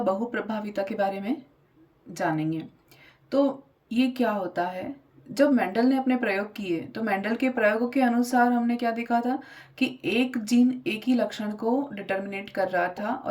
बहुप्रभाविता के बारे में जानेंगे। तो ये क्या होता है? जब मेंडल ने अपने प्रयोग किए तो मेंडल के प्रयोगों के अनुसार हमने क्या देखा था कि एक जीन एक ही लक्षण को डिटर्मिनेट कर रहा था,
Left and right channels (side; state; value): both; identical; correlation 1.00